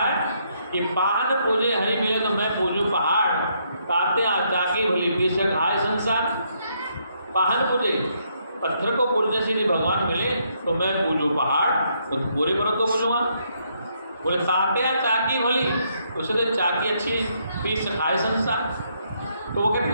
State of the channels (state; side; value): inverted; both; correlation -0.74